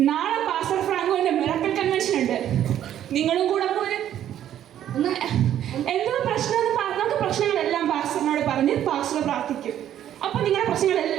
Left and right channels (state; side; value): quieter; left; 11.1 dB